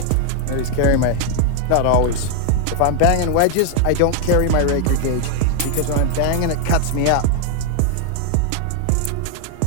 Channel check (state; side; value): different; both; correlation 0.00